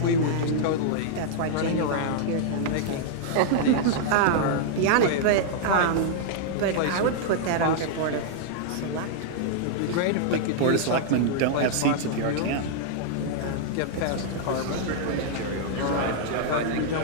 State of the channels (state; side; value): different; both; correlation -0.01